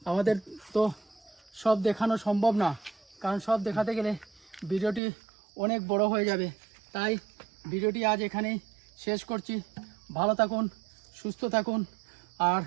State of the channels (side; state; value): left; drops out; at 5.0 s